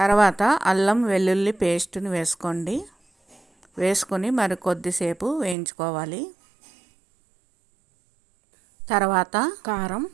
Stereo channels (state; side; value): drops out; left; at 5.6 s